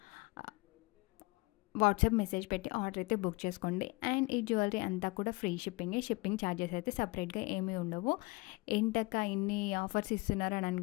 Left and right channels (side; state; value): right; quieter; 25.4 dB